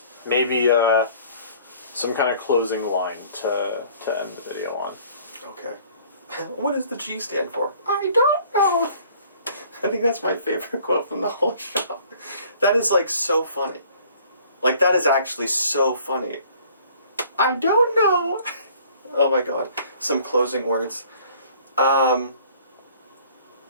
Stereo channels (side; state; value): both; inverted; correlation -0.55